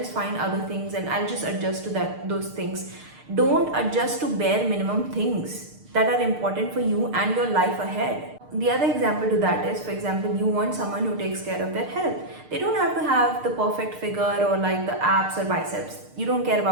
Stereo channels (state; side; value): late; left; 6.6 ms